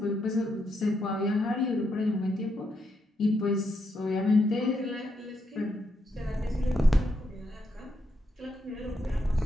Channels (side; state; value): both; normal; correlation 0.80